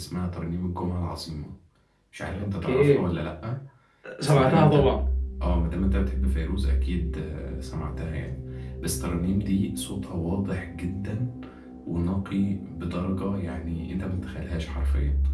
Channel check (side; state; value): both; identical; correlation 1.00